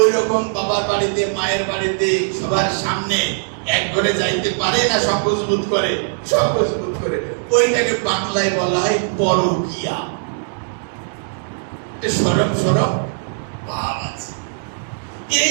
ওই রকম বাবার বাড়িতে মায়ের বাড়িতে সবার সামনে এক ঘরে যাইতে পারে না, সংকোচ বোধ করে, সংকোচ বোধ করে। ওইটাকে বাংলায় বলা হয় পরকীয়া। সরব সরব ভাব আছে।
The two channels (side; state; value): left; silent; digital silence